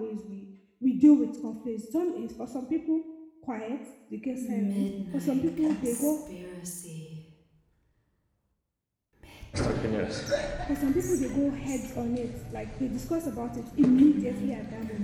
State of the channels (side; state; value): both; identical; correlation 1.00